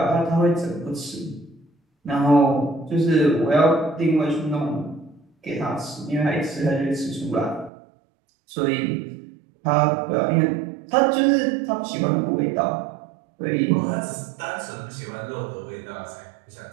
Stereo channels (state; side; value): drops out; left; at 7.7 s